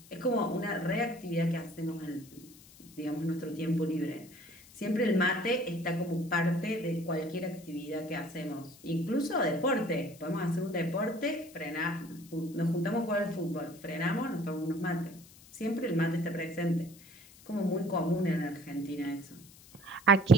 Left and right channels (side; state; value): left; noise; hiss, 22 dB below the sound